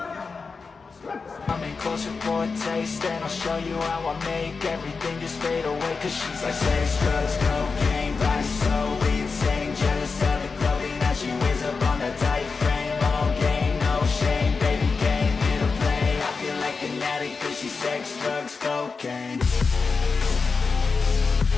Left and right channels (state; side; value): quieter; right; 4.7 dB